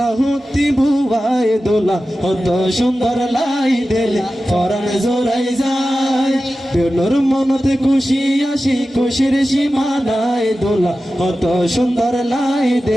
ভুবাই দোলা কত সুন্দর লাই দিলে পরাণ জোড়াই যায়। নূর মনতে খুশি আসি খুশির সীমানায় দোলা কত সুন্দর লাই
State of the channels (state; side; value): normal; both; correlation 0.94